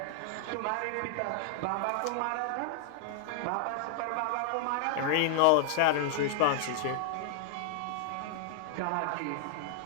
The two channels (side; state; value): both; different; correlation -0.01